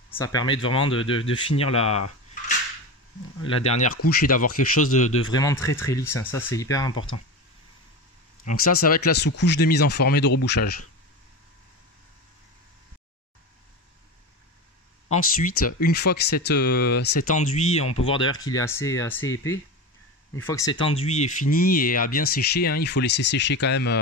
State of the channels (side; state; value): both; normal; correlation 0.25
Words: Ça permet vraiment de finir la dernière couche et d'avoir quelque chose de vraiment très très lisse, hein. Ça c'est hyper important. Donc ça va être la sous-couche de mise en forme et de rebouchage. Ensuite, une fois que cet enduit, on peut voir d'ailleurs qu'il est assez épais, une fois que cet enduit est fini et a bien séché, hein, il faut laisser sécher quand